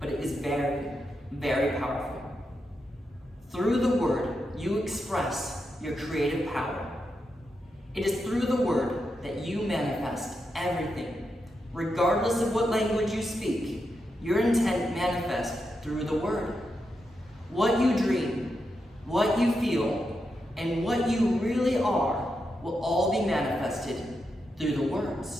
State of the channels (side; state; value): both; normal; correlation 0.86